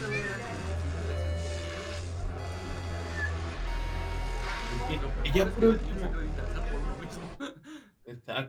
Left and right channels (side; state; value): both; identical; correlation 1.00